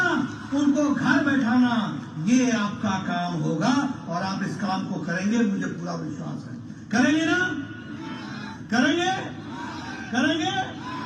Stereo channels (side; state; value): both; identical; correlation 1.00